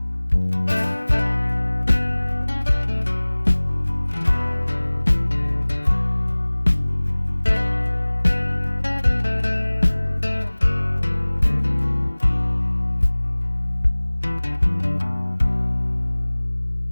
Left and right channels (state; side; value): inverted; both; correlation -1.00